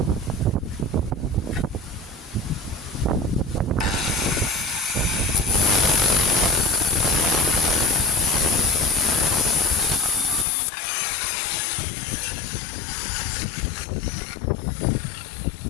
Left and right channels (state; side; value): drops out; right; at 10.5 s